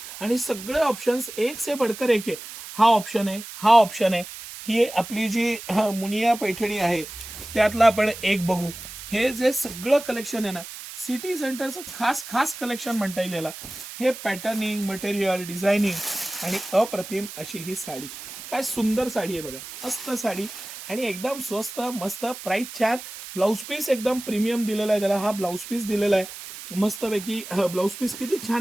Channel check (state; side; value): noise; right; hiss, 12 dB below the sound